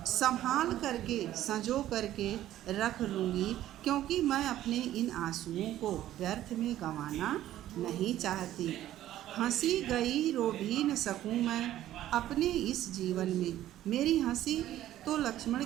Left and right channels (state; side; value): quieter; left; 13.2 dB